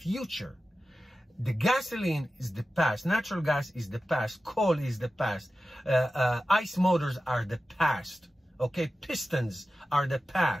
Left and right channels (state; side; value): normal; both; correlation 0.94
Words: The gasoline is the past. Natural gas is the past. Coal is the past. ICE motors are the past. Okay, pistons are the